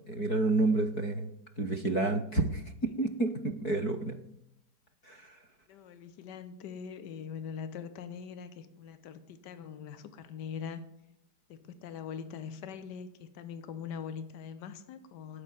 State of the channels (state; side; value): late; right; 4.6 ms